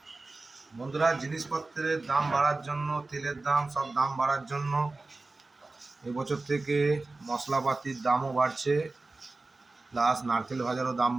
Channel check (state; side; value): quieter; left; 3.4 dB